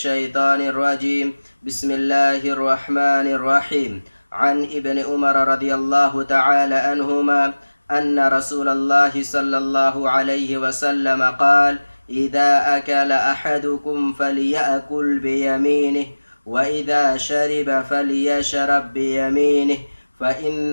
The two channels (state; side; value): inverted; both; correlation -1.00